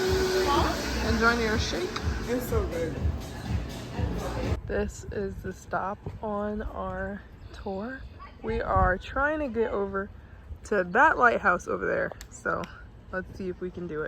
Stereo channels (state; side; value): identical; both; correlation 1.00